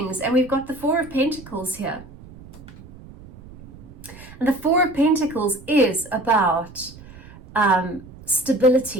And we've got the Four of Pentacles here. And the Four of Pentacles is about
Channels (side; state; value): right; noise; rumble, 19 dB below the sound